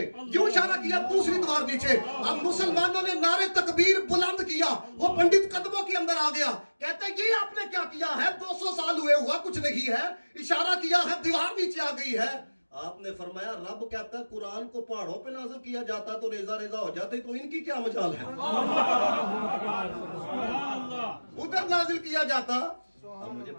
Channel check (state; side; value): inverted; both; correlation -1.00